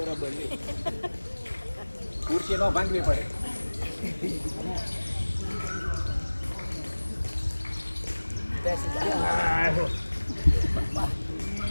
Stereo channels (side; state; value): both; inverted; correlation -1.00